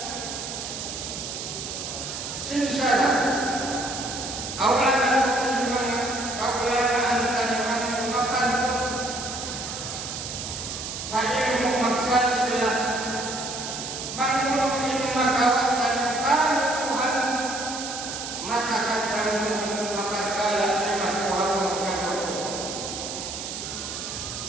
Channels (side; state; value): right; noise; hiss, 6 dB below the sound